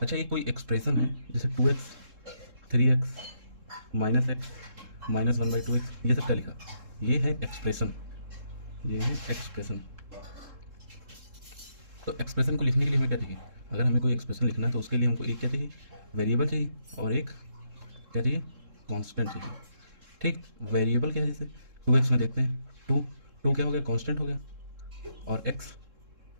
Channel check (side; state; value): left; late; 3.7 ms